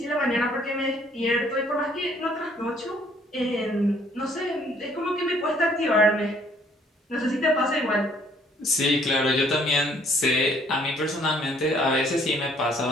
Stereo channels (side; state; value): both; normal; correlation 0.62